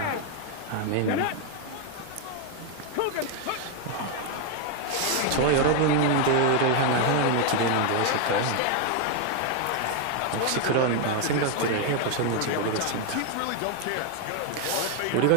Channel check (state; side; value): different; both; correlation 0.00